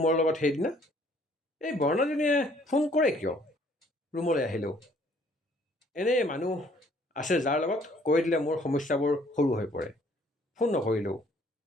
লগত সেইদিনা? এই বৰ্ণালীজনীয়ে ফোন কৰে কিয়? ৰুমলৈ আহিলোঁ। এনেই মানুহ আছে যাৰ লগত কৈ দিলে মোৰ সমস্যাবোৰ সৰু হৈ পৰে। ফোন নকৰিলেও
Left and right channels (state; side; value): normal; both; correlation 0.61